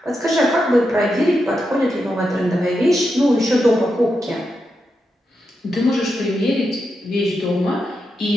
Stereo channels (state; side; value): normal; both; correlation 0.86